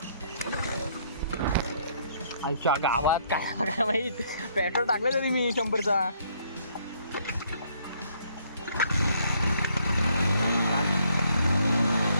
आमच्या गावात काय काय माहित पेट्रोल टाकलं तरी मी 100चा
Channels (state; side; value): inverted; both; correlation -0.67